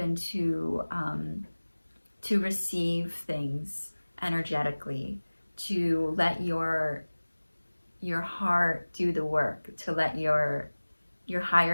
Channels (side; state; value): both; inverted; correlation -1.00